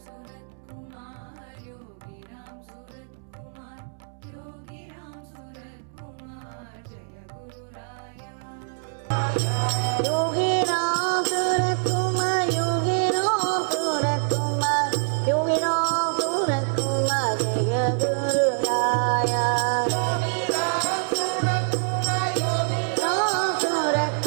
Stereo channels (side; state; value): left; silent; 61 dB below the other